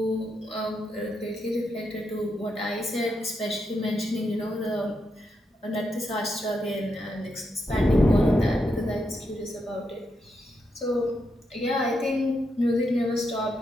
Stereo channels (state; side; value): normal; both; correlation 0.83